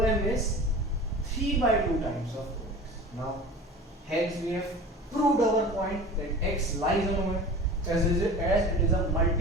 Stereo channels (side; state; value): both; normal; correlation 0.37